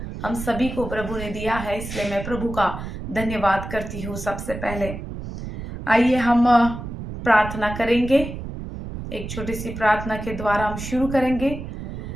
हम सभी को प्रभु ने दिया है। इसलिए मैं प्रभु का धन्यवाद करती हूँ। सबसे पहले आइए हम प्रार्थना करेंगे। एक छोटी सी प्रार्थना के द्वारा हम शुरू करेंगे।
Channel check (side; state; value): right; noise; rumble, 8 dB below the sound